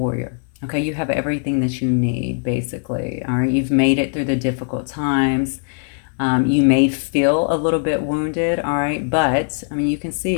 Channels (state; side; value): silent; right; digital silence